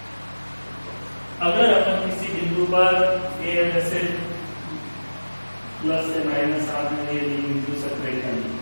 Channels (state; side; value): inverted; both; correlation -1.00